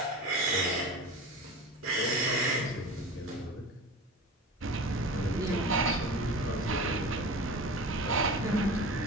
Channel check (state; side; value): normal; both; correlation 0.33